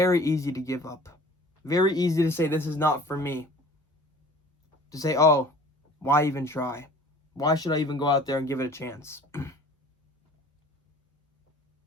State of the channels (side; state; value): both; normal; correlation 0.47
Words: easy to give up. Very easy to say, this is not for me. To say, oh, why even try? Why should I even go out there and give it a chance?